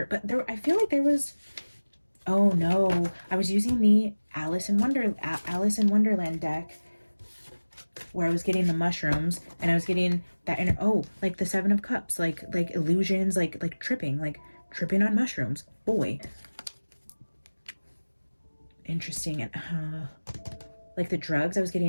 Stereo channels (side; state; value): both; inverted; correlation -1.00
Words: but I feel like there was, oh no, I was using the Alice in Wonderland deck where I was getting the mushrooms, and I was getting that, and like the 7 of Cups, like illusions, like tripping on mushrooms. Boy, interesting. And like the drugs, I was